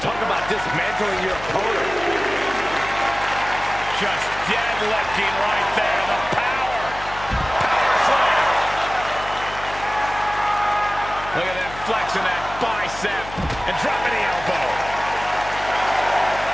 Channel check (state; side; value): noise; left; hum, 14 dB below the sound